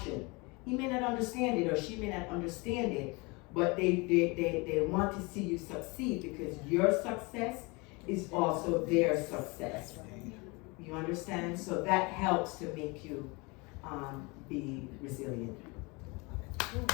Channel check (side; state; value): right; quieter; 27.3 dB